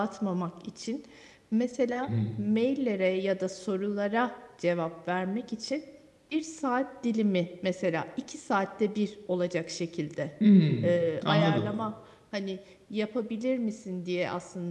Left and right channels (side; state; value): both; identical; correlation 1.00